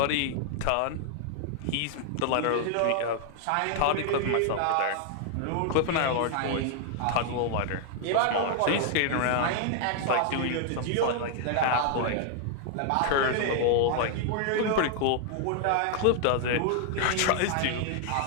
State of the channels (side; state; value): both; different; correlation 0.00